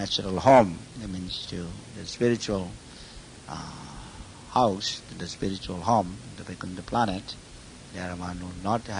home, that means to the spiritual house, to the spiritual home, the Vaikuntha planet. There one will not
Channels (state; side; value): identical; both; correlation 1.00